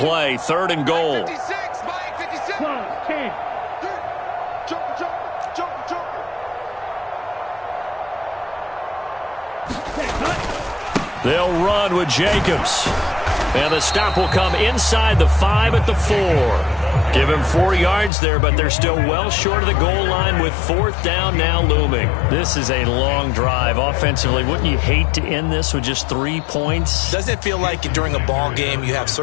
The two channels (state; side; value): drops out; right; at 18.1 s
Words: 3rd and goal. 56, Mike, 56. Close, 10. They'll run with Jacobs. And the stop will come inside the 5 at the 4. Give him 4 yards there, but they're still well short of the goal line with 4th down now looming. This is a long drive offensively. Wouldn't you hate to end this with just 3 points? Doesn't it feel like during a ball game you have